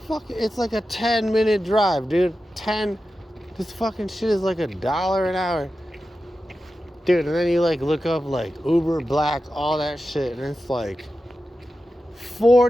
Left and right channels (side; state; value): both; normal; correlation 0.92